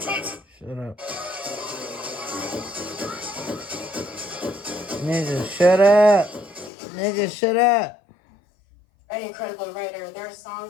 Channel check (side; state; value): right; drops out; at 6.7 s